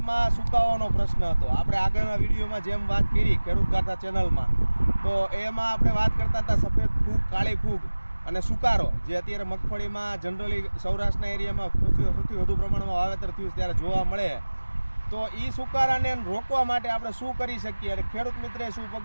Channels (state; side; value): inverted; both; correlation -1.00